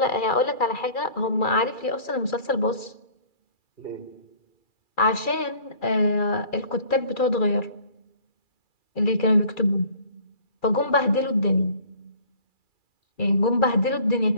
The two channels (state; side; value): late; right; 2.3 ms